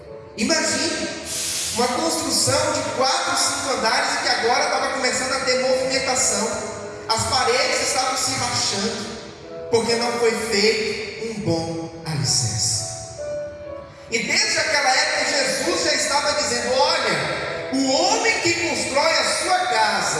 Imagine uma construção de 4, 5 andares e que agora estava começando a ter movimentação. As paredes estavam se rachando, porque não foi feito um bom alicerce. E desde aquela época Jesus já estava dizendo: olha, o homem que constrói a sua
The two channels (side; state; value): both; identical; correlation 1.00